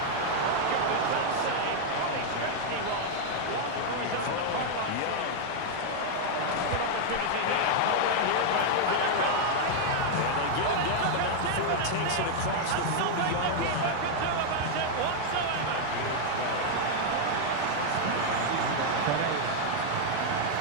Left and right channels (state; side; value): different; both; correlation 0.00